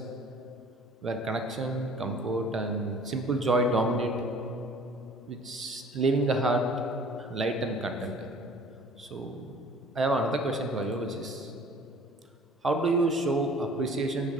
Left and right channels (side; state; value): both; normal; correlation 0.49